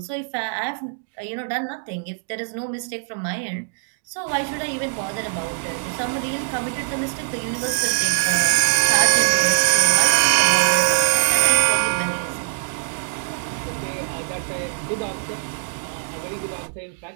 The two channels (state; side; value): silent; left; digital silence